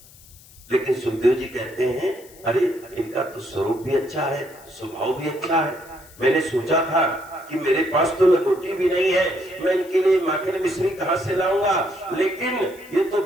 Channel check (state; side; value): noise; left; hiss, 23 dB below the sound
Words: लेकिन सुखदेव जी कहते हैं अरे इनका तो स्वरूप भी अच्छा है, स्वभाव भी अच्छा है। मैंने सोचा था कि मेरे पास तो लंगोटी भी नहीं है, मैं इनके लिए माखन मिश्री कहां से लाऊंगा, लेकिन ये तो